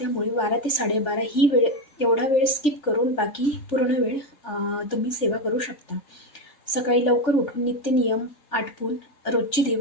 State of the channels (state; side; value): late; right; 3.4 ms